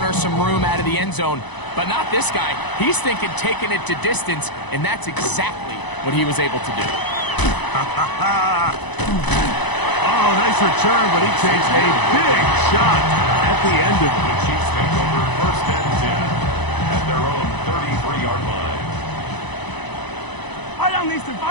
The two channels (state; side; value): late; right; 1.0 ms